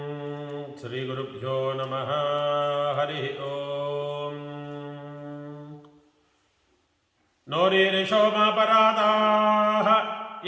శ్రీ గురుభ్యో నమః. హరి ఓం. నోరీరిషోమాపరాధాః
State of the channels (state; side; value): identical; both; correlation 1.00